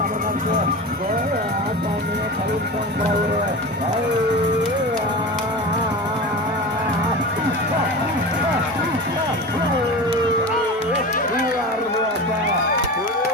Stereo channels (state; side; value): normal; both; correlation 0.29